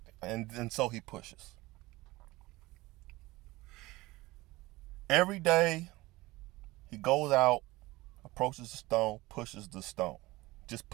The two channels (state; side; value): quieter; left; 20.2 dB